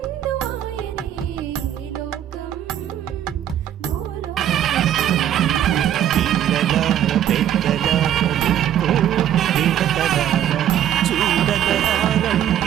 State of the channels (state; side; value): quieter; left; 10.8 dB